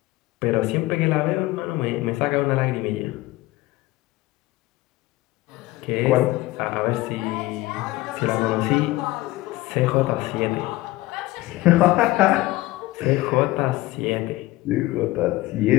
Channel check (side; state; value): right; quieter; 18.4 dB